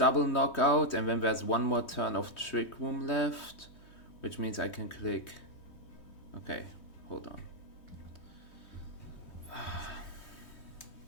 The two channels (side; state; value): right; late; 3.2 ms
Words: knockout, and then there's one more turn of Trick Room left, which means I can click. Okay, hold on.